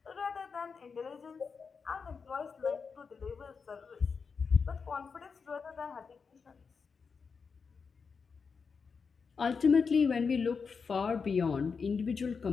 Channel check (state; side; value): quieter; right; 5.4 dB